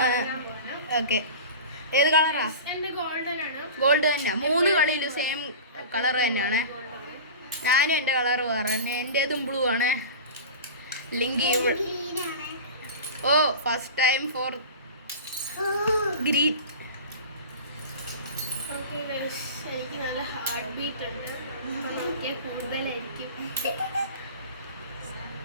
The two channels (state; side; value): inverted; both; correlation -0.34